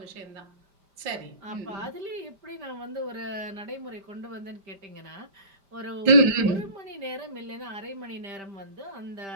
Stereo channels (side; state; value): left; late; 5.0 ms